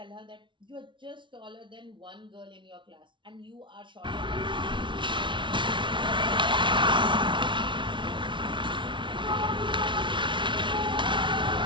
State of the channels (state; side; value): late; left; 0.24 ms